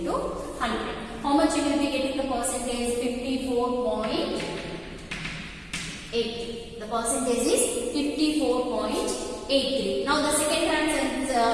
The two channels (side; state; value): both; identical; correlation 1.00